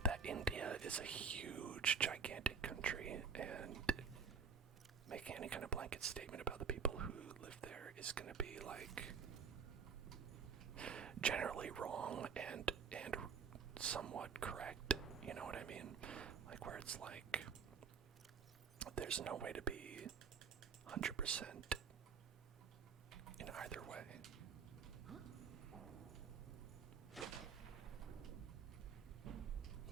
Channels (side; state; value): left; quieter; 6.1 dB